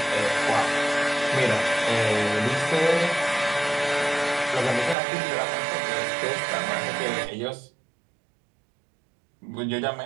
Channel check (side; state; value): left; drops out; at 5.0 s